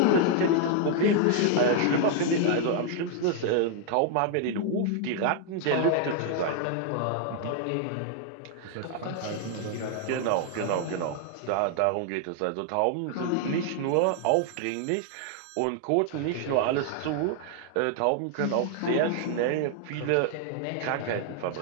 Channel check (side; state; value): both; different; correlation 0.00